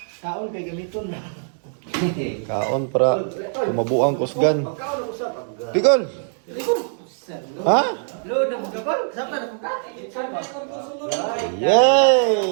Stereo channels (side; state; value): left; silent; digital silence